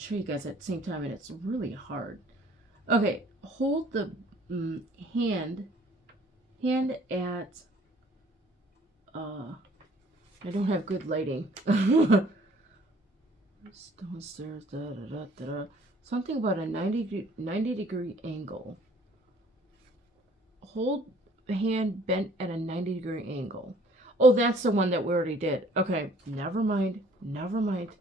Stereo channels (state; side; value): normal; both; correlation 0.56